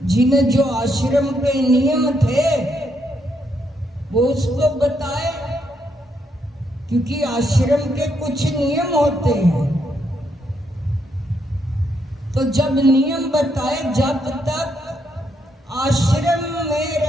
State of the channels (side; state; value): both; normal; correlation 0.77